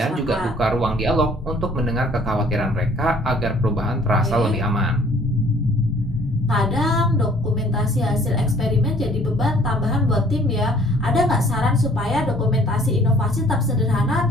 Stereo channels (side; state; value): both; normal; correlation 0.57